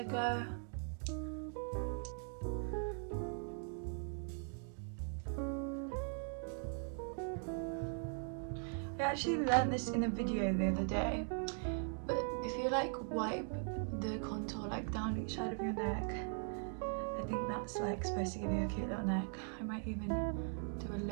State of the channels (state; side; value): silent; left; 51 dB below the other